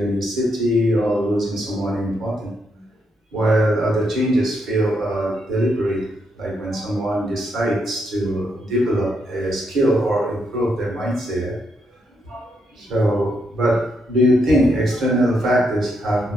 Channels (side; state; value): both; normal; correlation 0.78